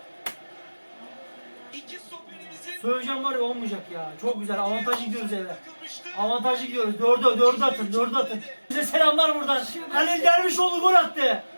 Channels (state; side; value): inverted; both; correlation -1.00